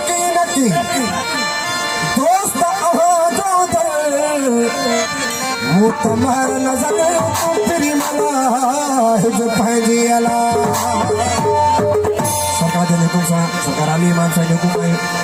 नकी दोस्त अहो जो दर मुतमहर नजर तेरी मला जो पंहिंजी अला सरकार जे हुकुम सां सरकार अली इमाम साईं जो हुकुम आहे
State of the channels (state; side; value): identical; both; correlation 1.00